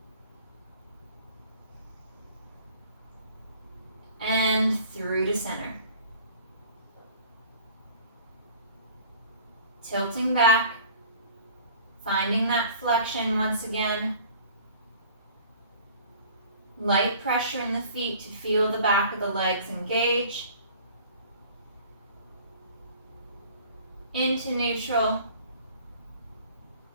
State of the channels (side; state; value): both; inverted; correlation -0.48